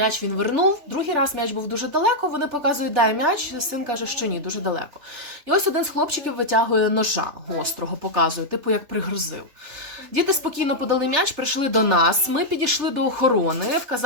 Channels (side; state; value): left; late; 3.3 ms